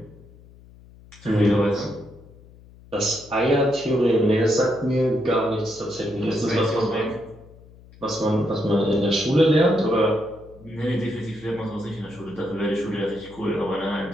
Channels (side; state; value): left; noise; hum, 23 dB below the sound